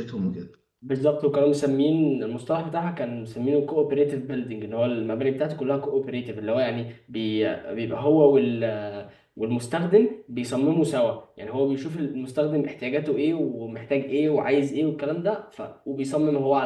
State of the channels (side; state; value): both; identical; correlation 1.00